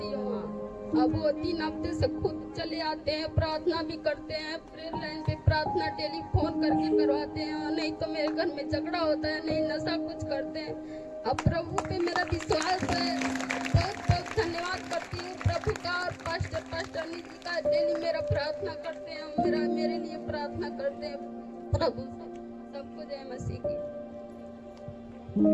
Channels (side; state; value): both; identical; correlation 1.00